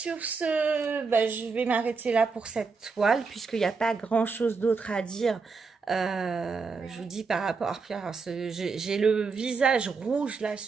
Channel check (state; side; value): quieter; left; 4.7 dB